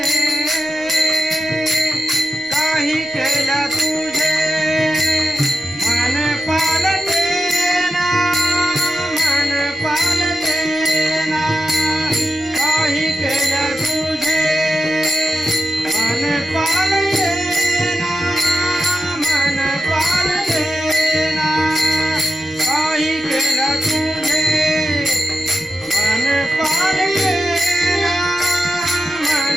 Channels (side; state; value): left; noise; rumble, 27 dB below the sound